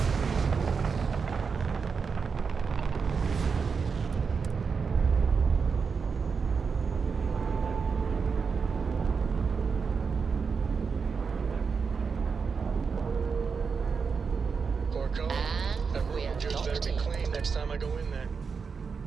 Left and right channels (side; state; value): left; quieter; 5.5 dB